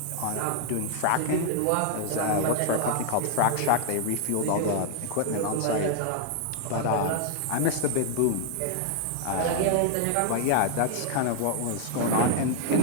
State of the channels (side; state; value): both; different; correlation 0.00